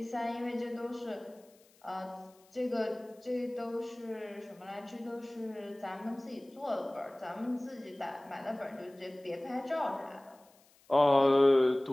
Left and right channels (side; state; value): left; noise; hiss, 30 dB below the sound